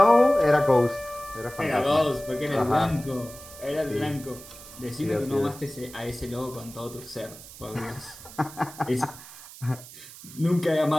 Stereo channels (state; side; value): noise; right; hiss, 17 dB below the sound